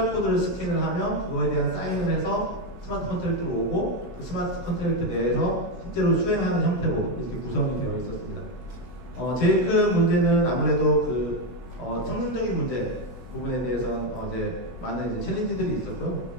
스캔을 하면 그거에 대한 사인을 해서 스마트 컨트랙트로 오고, 그 스마트 컨트랙트 내에서 실제로 수행하는 형태로 이렇게 구성이 되어 있었습니다. 제일 큰 문제는 아무래도 그 성능적인 문제 부분에 대해서는 이제 많은 이제 챌린지들이 있었고요.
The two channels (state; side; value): late; right; 16 ms